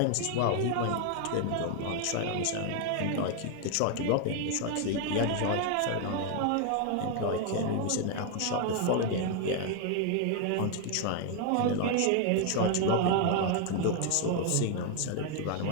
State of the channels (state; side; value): different; both; correlation 0.00